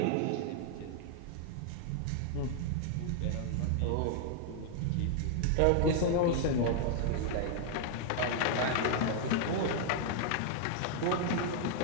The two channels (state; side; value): different; both; correlation 0.00